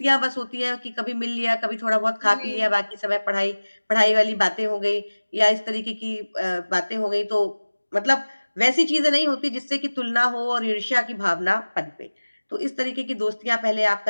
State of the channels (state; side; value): inverted; both; correlation -1.00